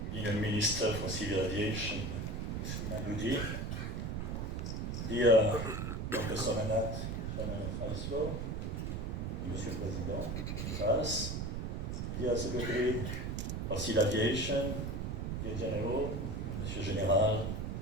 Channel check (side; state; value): right; noise; rumble, 2 dB below the sound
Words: Union Minister for Civil Aviation, Madoudi, dear Dr. Somanat, Chairman of ISLO, Monsieur le Président, Gifas, dear Secretary of Civil Aviation, dear General, Monsieur Général,